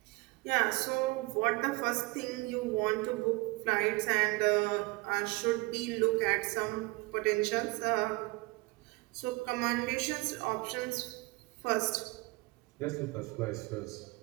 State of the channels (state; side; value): quieter; left; 23.7 dB